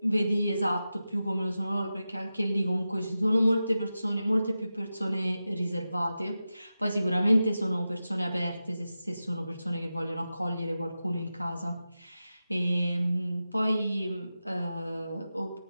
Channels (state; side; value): inverted; both; correlation -0.92